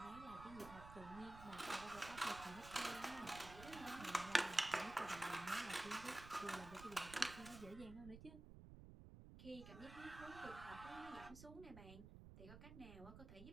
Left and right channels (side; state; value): right; noise; rumble, 13 dB below the sound